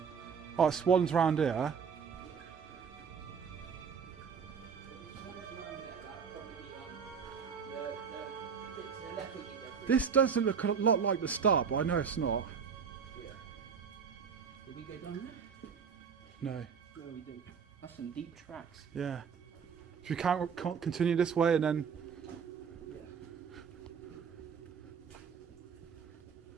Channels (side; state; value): left; quieter; 6.5 dB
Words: Oh, swans round here. This does look a lot like the start, but I know it's not. Yeah. Did we go down there? No. No, we didn't. That's some deep tracks. Yeah. Should we can't continue this way and then